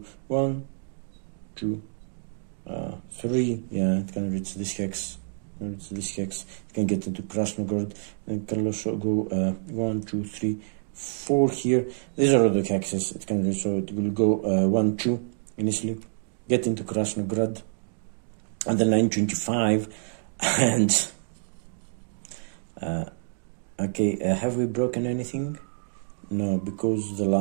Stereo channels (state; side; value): silent; left; digital silence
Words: 1, 2. 3, yeah, it can reach this hex. It can get into Krasnograd, and it can also go 1, 2, 3, 4 here. These are all the hexes it can reach, so it will go 1, 2 initially, get into Krasnograd, and then 925, and okay, have we broken anything? No, because the